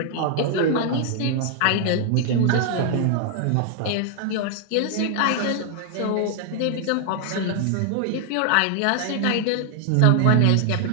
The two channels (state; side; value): different; both; correlation 0.00